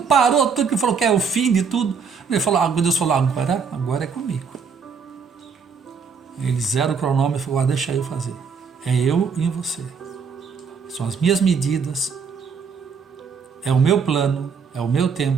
parou tudo, que falou que é o fim de tudo, Deus falou, agora é comigo. Ele zera o cronômetro e falou, deixa eu fazer. É eu e você. São as minhas medidas, é o meu plano, é o meu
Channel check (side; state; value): left; quieter; 5.9 dB